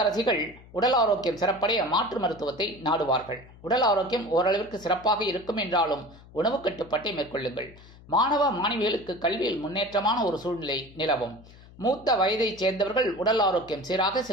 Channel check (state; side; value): noise; left; hum, 22 dB below the sound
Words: உடல் ஆரோக்கியம் சிறப்படைய மாற்று மருத்துவத்தை நாடுவார்கள். உடல் ஆரோக்கியம் ஓரளவிற்கு சிறப்பாக இருக்கும் என்றாலும் உணவு கட்டுப்பாட்டை மேற்கொள்ளுங்கள். மாணவ மாணவிகளுக்கு கல்வியில் முன்னேற்றமான ஒரு சூழ்நிலை நிலவும். மூத்த வயதைச் சேர்ந்தவர்கள் உடல் ஆரோக்கியம் சீராக